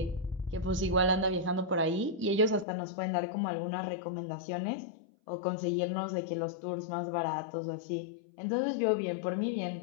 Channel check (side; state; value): right; drops out; at 2.7 s